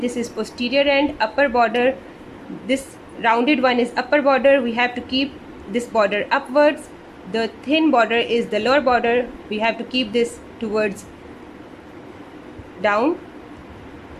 this is posterior end, upper border, this rounded one is upper border, we have to keep this border upwards. The thin border is the lower border, we have to keep this towards down.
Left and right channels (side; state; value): both; identical; correlation 1.00